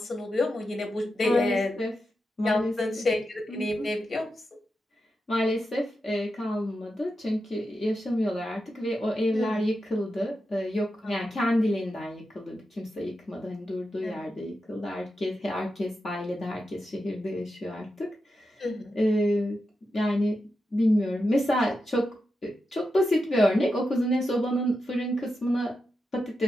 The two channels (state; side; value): normal; both; correlation 0.88